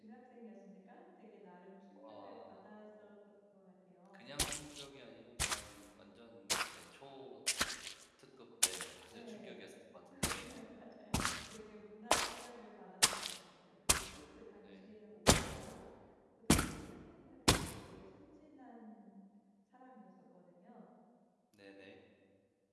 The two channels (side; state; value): both; identical; correlation 1.00